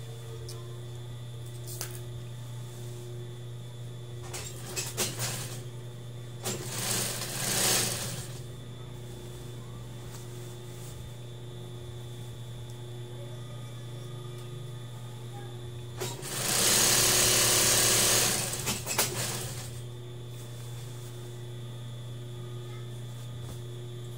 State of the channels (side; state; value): both; identical; correlation 1.00